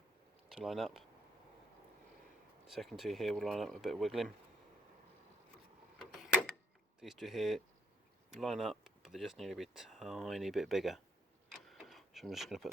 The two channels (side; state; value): both; normal; correlation 0.70